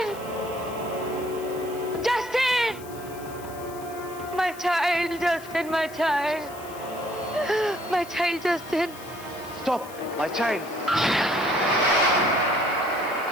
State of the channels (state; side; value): noise; left; hiss, 18 dB below the sound